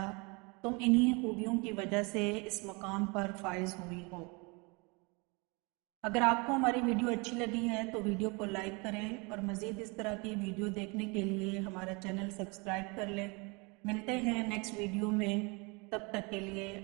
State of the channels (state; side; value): quieter; left; 29.1 dB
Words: تم انہی خوبیوں کی وجہ سے اس مقام پر فائز ہوئی ہو۔ اگر آپ کو ہماری ویڈیو اچھی لگی ہے تو ویڈیو کو لائک کریں اور مزید اس طرح کی ویڈیو دیکھنے کے لیے ہمارا چینل سبسکرائب کر لیں۔ ملتے ہیں نیکسٹ ویڈیو میں، تب تک کے لیے